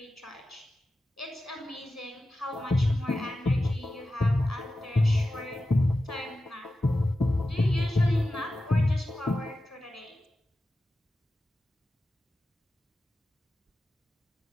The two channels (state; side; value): normal; both; correlation 0.93